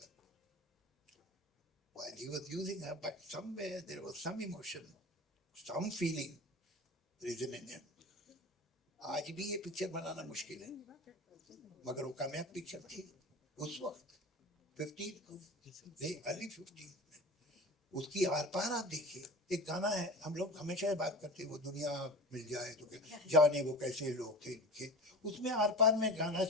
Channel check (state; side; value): normal; both; correlation 0.33